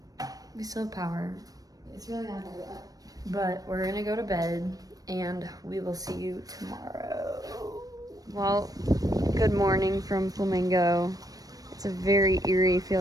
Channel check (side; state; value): left; late; 0.18 ms